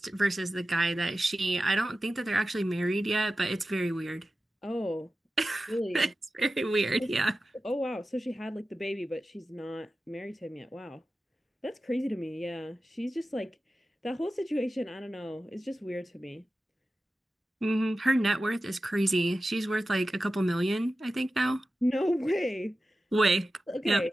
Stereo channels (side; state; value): both; normal; correlation 0.94